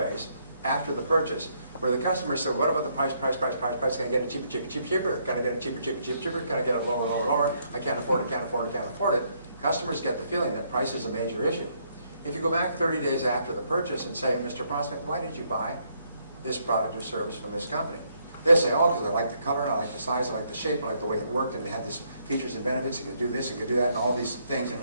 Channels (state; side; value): inverted; both; correlation -0.72